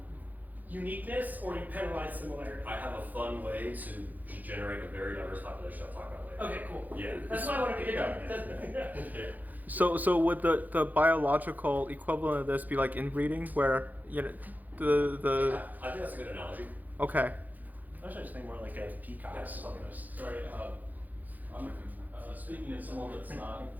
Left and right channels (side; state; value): left; late; 0.082 ms